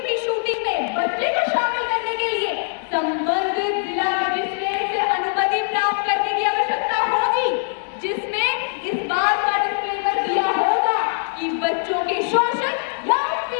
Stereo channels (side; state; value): right; silent; 64 dB below the other